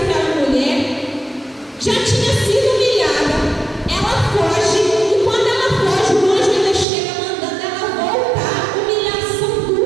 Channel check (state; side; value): drops out; left; at 6.9 s